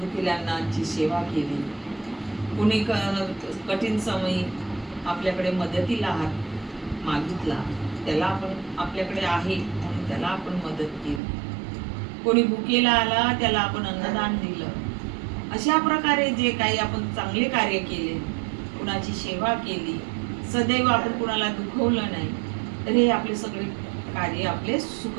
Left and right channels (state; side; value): drops out; left; at 11.2 s